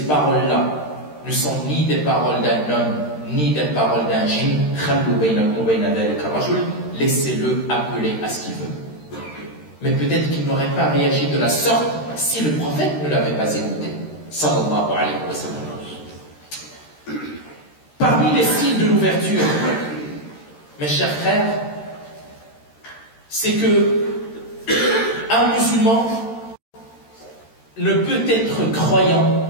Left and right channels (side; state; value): right; late; 13 ms